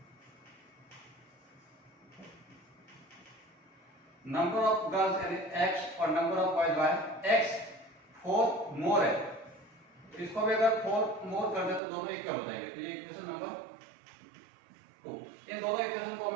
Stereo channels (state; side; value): drops out; left; at 11.8 s